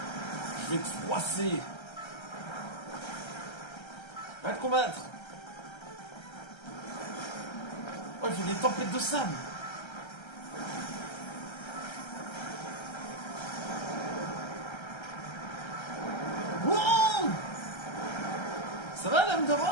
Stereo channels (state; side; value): late; right; 1.3 ms